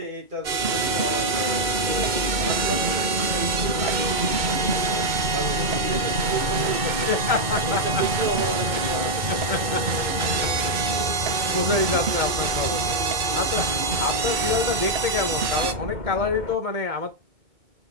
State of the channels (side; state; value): left; late; 2.6 ms